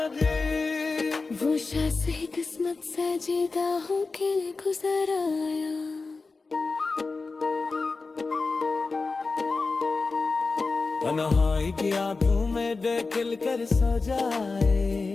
वो शायद ही किस्मत से जीता हो के गुजर आया। तन्हाई की आंखों में दिल कर सो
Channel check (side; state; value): right; quieter; 4.0 dB